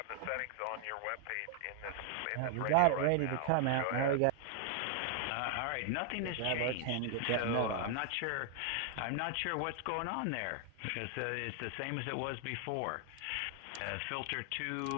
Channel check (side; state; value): both; different; correlation 0.00